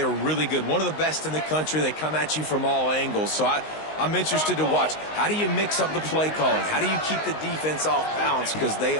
really good. One of the best in the country. They come at you from all angles. So I'm interested to watch. How do you mix up the play calling? How do you keep the defense off balance? Because they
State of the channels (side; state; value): right; late; 19 ms